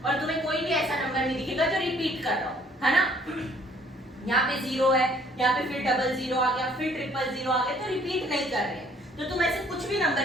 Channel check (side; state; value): both; normal; correlation 0.60